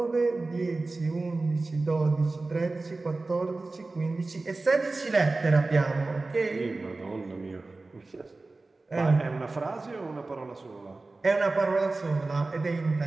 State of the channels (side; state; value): left; quieter; 3.4 dB